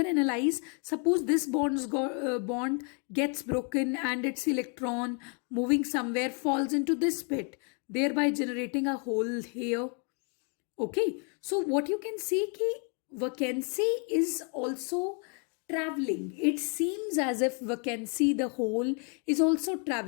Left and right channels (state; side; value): quieter; right; 38.4 dB